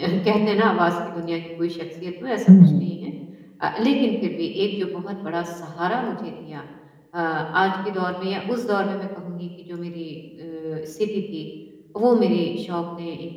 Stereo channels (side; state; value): both; identical; correlation 1.00